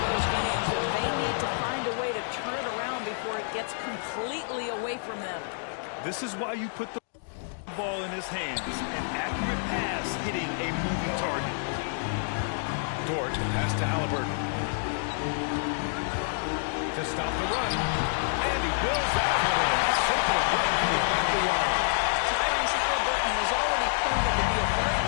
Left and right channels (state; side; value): silent; right; digital silence